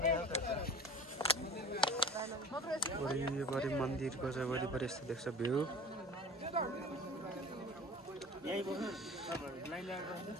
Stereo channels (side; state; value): both; normal; correlation 0.39